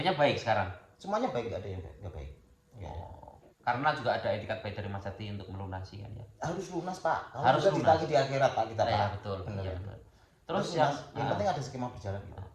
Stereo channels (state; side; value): identical; both; correlation 1.00